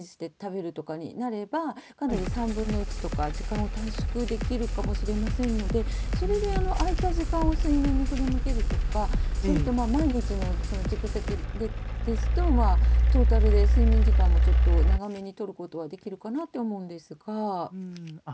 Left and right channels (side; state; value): both; identical; correlation 1.00